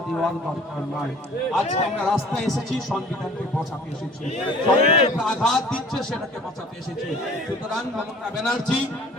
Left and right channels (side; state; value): both; normal; correlation 0.49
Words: দেওয়ার দরকার নয়। আজকে আমরা রাস্তায় এসেছি সংবিধানকে বাঁচাতে এসেছি, আঘাত দিচ্ছে সেটাকে বাঁচাতে এসেছি। সুতরাং মমতা ব্যানার্জি